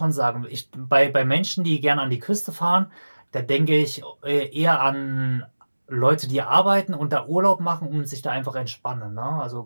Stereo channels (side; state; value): both; inverted; correlation -1.00